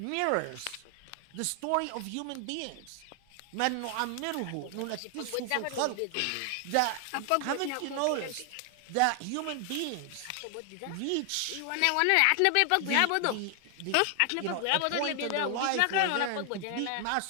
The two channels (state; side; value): different; both; correlation 0.00